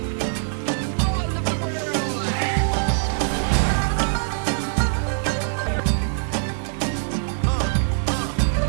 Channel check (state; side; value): silent; left; 63 dB below the other